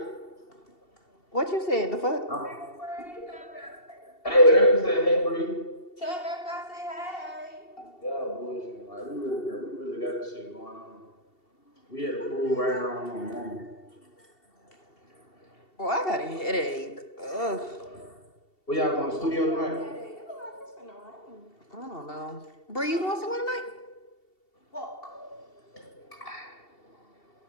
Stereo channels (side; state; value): right; late; 2.7 ms